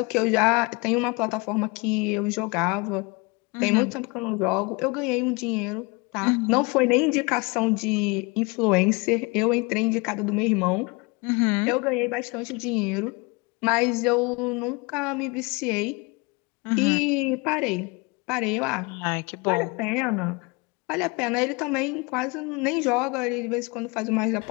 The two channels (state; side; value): quieter; right; 27.6 dB